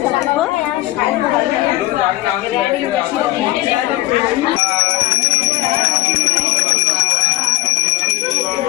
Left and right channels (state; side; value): quieter; right; 17.3 dB